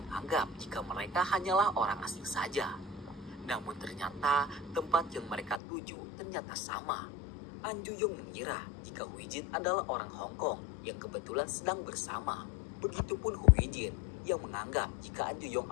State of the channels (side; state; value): right; drops out; at 5.6 s